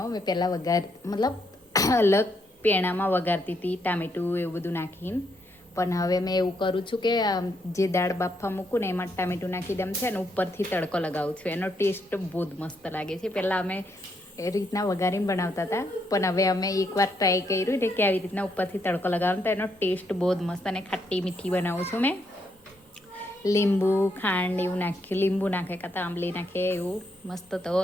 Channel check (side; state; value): both; normal; correlation 0.76